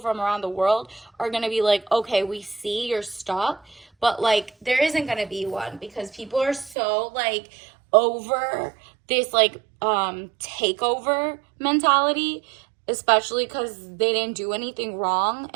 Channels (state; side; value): drops out; left; at 6.8 s